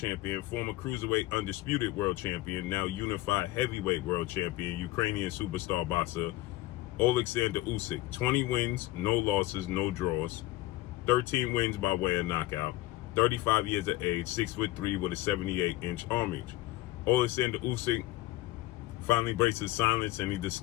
former cruiserweight undisputed world champion, now unified heavyweight world champion, Ukrainian superstar boxer, Oleksandr Usyk. 20 wins, no losses, no draws, 13 wins by way of knockout. 35 years of age, 6'3" with a 78-inch arm reach. Oleksandr Usyk finally breaks his silence and he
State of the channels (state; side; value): quieter; right; 17.3 dB